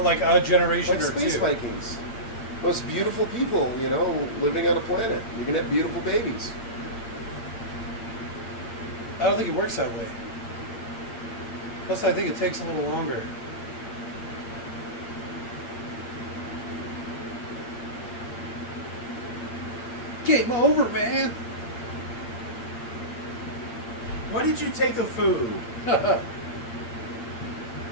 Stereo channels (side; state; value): right; late; 8.7 ms